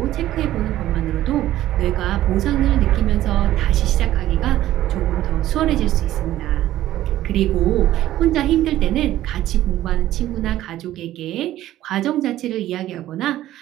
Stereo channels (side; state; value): left; quieter; 14.0 dB